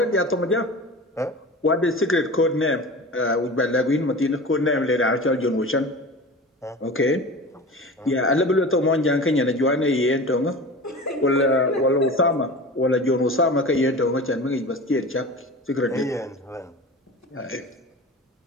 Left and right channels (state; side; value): normal; both; correlation 0.34